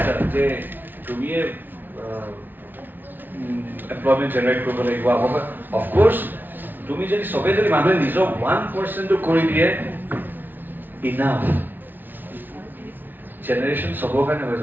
যে তুমিয়ে এমপ্লয়মেণ্ট জেনেৰেট কৰিব লাগিব অফক'ৰ্ছ তুমি যদি চবেই যদি মানুহে নিজৰ 1% কৰি দিয়ে ইনাফ জেনেৰেশ্যন চবৰ কাৰণে হৈ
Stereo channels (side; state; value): left; late; 0.090 ms